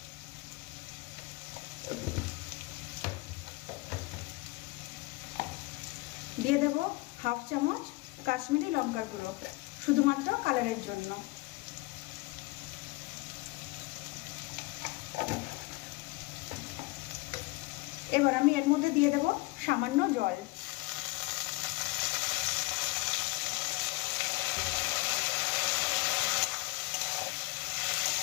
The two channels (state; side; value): quieter; right; 23.2 dB